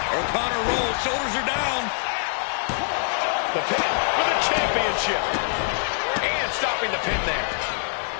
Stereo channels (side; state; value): right; silent; digital silence